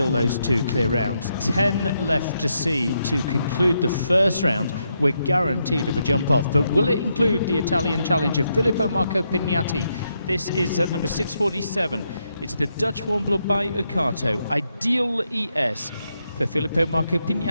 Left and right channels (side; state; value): both; inverted; correlation -0.80